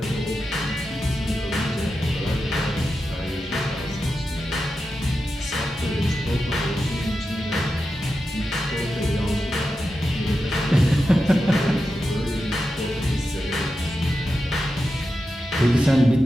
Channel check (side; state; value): both; normal; correlation 0.90